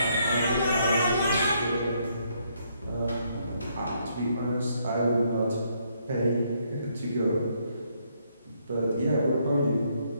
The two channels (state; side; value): inverted; both; correlation -0.72